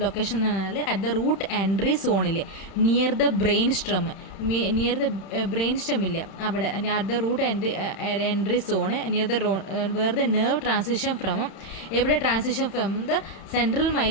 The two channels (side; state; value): right; late; 31 ms